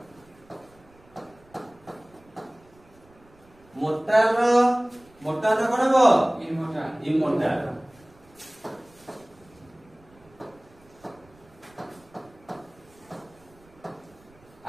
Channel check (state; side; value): noise; right; rumble, 28 dB below the sound